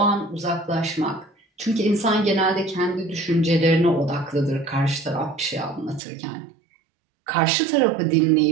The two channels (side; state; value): left; drops out; at 6.0 s